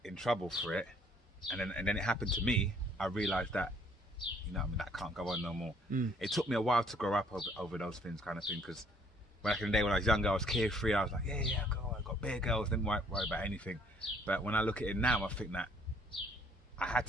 in trouble for it, and then it happened to me, I realised that, you know what I mean, that can't go on no more. It took me a while to grow up over those things, kind of thing, because back in the day when I was younger, I was carefree. I was like, yeah, go on, I got bare girls, didn't worry about anything. But when I look at it now, I think that I had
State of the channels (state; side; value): normal; both; correlation 0.62